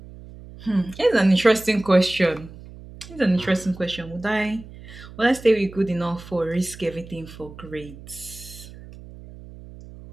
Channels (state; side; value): noise; right; hum, 17 dB below the sound